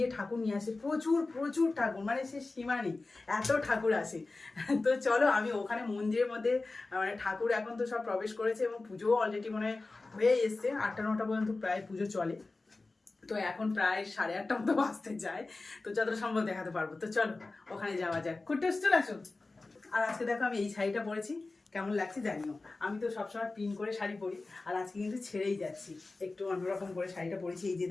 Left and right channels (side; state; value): right; quieter; 3.4 dB